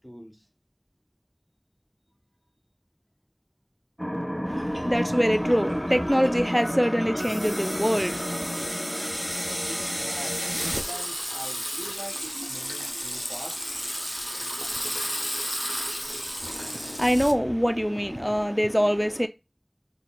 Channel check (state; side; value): identical; both; correlation 1.00